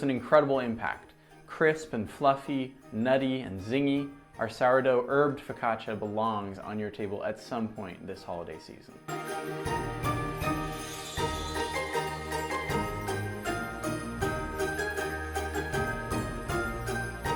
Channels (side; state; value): both; identical; correlation 1.00